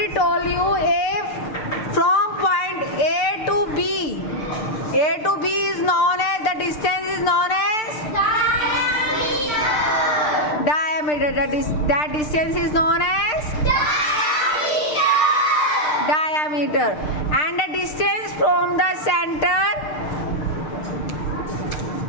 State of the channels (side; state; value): right; late; 6.6 ms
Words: told you if from point A to B. A to B is known as, the distance is known as diameter. That distance is known as diameter. And the distance from the center,